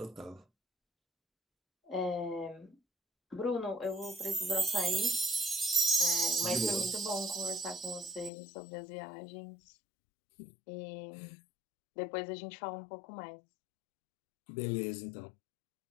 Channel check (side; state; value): right; drops out; at 8.3 s